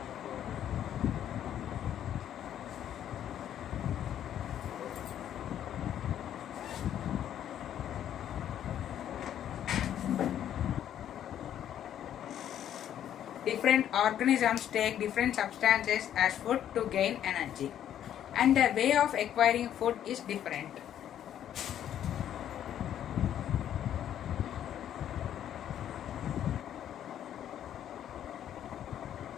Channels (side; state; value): right; quieter; 10.5 dB